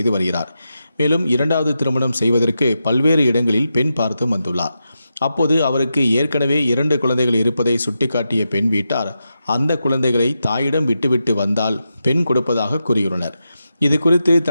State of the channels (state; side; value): inverted; both; correlation -0.88